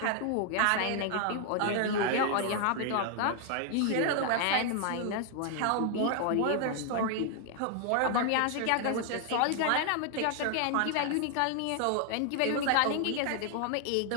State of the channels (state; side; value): different; both; correlation 0.00